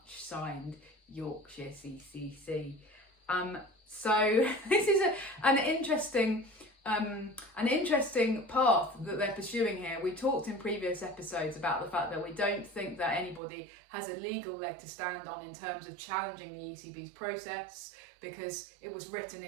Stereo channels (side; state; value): left; drops out; at 13.4 s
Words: signed Yorkshire CCC. So this is an interesting path that they're pursuing here. We talked in previous episodes about the fact that we don't think that anybody has a legal leg to stand on in terms of challenging the ECB's process, because it was written